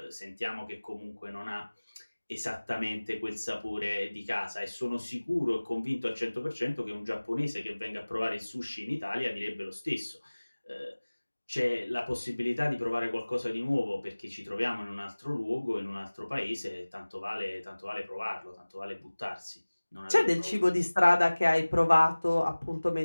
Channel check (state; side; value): inverted; both; correlation -1.00